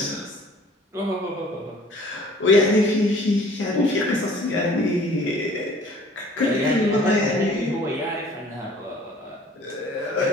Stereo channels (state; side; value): normal; both; correlation 0.52